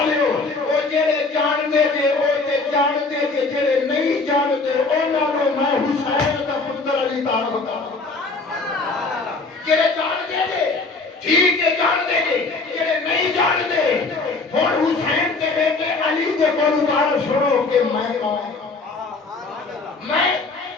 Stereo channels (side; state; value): right; quieter; 3.8 dB